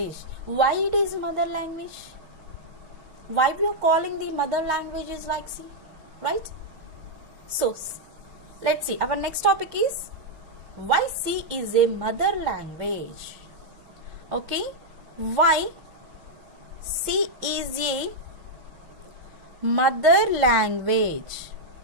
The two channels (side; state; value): left; late; 6.4 ms